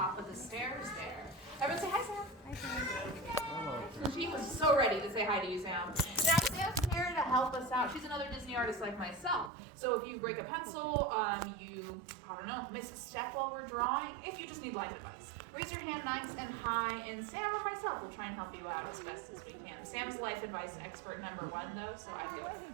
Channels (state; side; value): drops out; left; at 9.5 s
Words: of the stairs there. Everyone say hi, Sam. Hi, Sam. She was so ready to say hi to you, Sam. Now Sam's here to help us out. She's another Disney artist like myself. So if you break a pencil, miss a step while we're drawing, if you just need life advice, raise your hand nice and high, and Sam or myself will try and help you out as best as we can. Sam's life advice expert number one, though, so I do